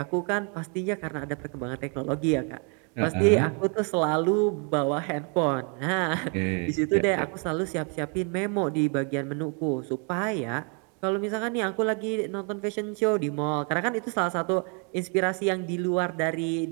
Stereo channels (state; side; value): quieter; left; 37.8 dB